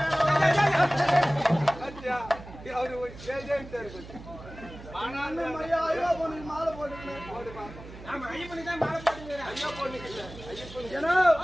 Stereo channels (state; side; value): noise; right; hum, 15 dB below the sound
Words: அத்தியா அவரு ஏஜென்ட் இருக்கு ஆனாலும் மரியா ஐயோ பொண்ணுக்கு மாலை போட்டுக்கணும் போடுமா ஆமா ஐயப்பனுக்கு தான் மாலை போடுறேன் ஐயா பொண்ணுக்கு ஐயப்பன் ஏனோ